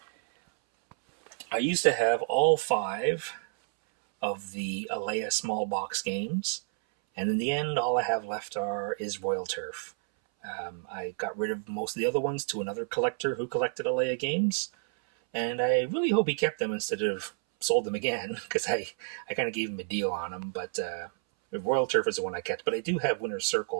I used to have all 5 of the Alea small box games And in the end, all I have left is Royal Turf. I got rid of most of the other ones to another collector who collected Alea games, and I really hope he kept them instead of sold them again, because I kind of gave him a deal on them. But Royal Turf is the one I kept. But I do have Winner's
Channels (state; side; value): silent; left; 58 dB below the other